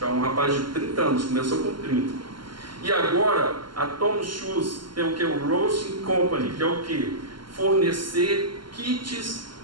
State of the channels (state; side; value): late; left; 0.72 ms